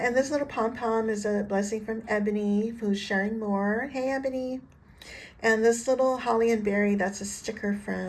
this little pom-pom is a blessing from Eboney, who's sharing more. Hey Eboney. And this little holly and berry, that's a sticker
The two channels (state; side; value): identical; both; correlation 1.00